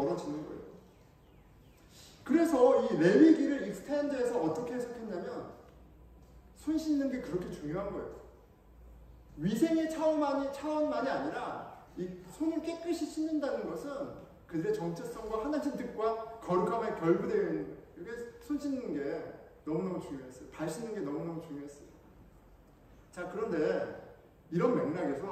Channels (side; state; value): both; identical; correlation 1.00